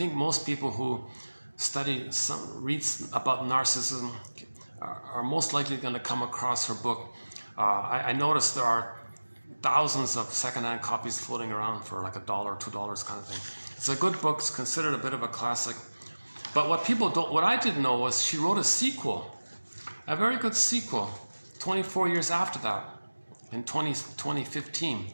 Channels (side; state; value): both; inverted; correlation -1.00